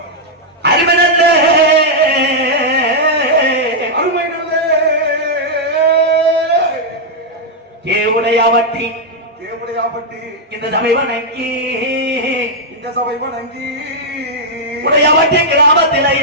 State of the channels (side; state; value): both; normal; correlation -0.04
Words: அருமை நல்ல அருமை நல்ல தேவுடையாவட்டி தேவடையாபட்டி இந்த சபை வணங்கி, இந்த சபை வணங்கி, உடையாவட்டி கிராமத்தில